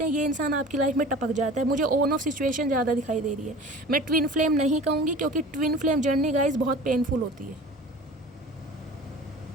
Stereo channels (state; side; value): normal; both; correlation 0.40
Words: हैं, ये इंसान आपकी लाइफ में टपक जाता है। मुझे ऑन ऑफ सिचुएशन ज़्यादा दिखाई दे रही है। मैं ट्विन फ्लेम नहीं कहूँगी, क्योंकि ट्विन फ्लेम जर्नी गाइस बहुत पेनफुल होती है।